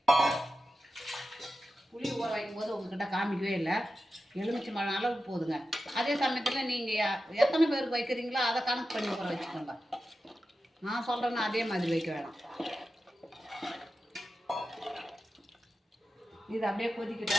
புளி ஊற வைக்கும் போது உங்கள்கிட்ட காமிக்கவே இல்லை, எலுமிச்சை மழை அளவுக்கு போதுங்க. அதே சமயத்தில் நீங்கள் எத்தனை பேருக்கு வைக்கிறீங்களோ அதை கணக்கு பண்ணி ஊற வச்சுக்கோங்க. நான் சொல்கிறேன்னா அதே மாதிரி வைக்க வேணாம். இது அப்படியே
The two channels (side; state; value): both; normal; correlation 0.92